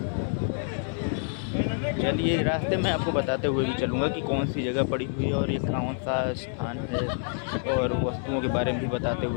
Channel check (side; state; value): right; silent; 56 dB below the other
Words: चलिए रास्ते में आपको बताते हुए भी चलूँगा कि कौन सी जगह पड़ी हुई है और ये कौन सा स्थान है, और वस्तुओं के बारे में भी बताते